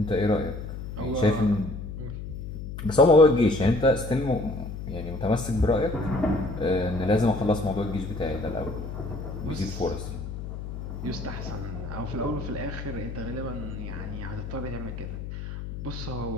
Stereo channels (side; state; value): left; noise; hum, 8 dB below the sound